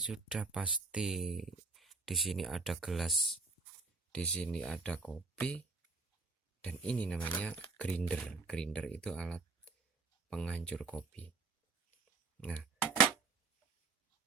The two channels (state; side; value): quieter; left; 4.2 dB